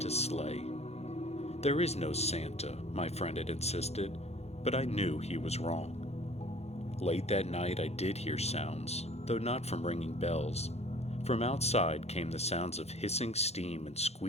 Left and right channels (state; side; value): late; right; 0.31 ms